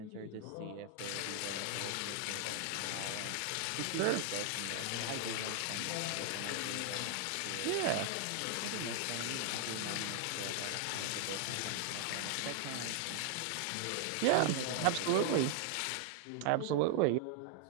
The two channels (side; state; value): both; different; correlation 0.00